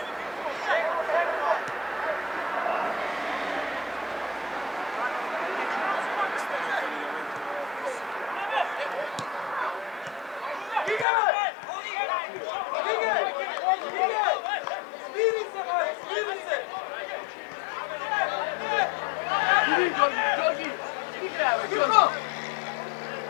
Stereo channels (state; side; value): drops out; right; at 11.1 s